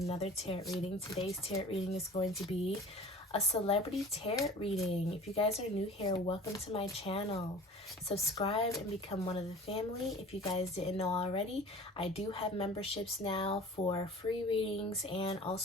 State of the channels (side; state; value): both; normal; correlation 0.42